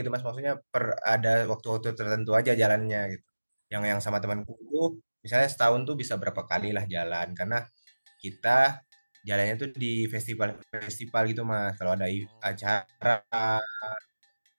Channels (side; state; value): both; inverted; correlation -1.00